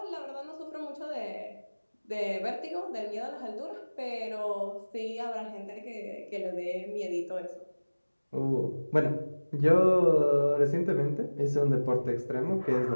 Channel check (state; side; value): inverted; both; correlation -1.00